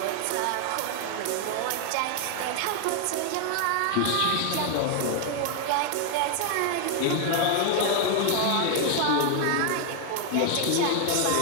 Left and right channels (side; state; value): both; different; correlation 0.00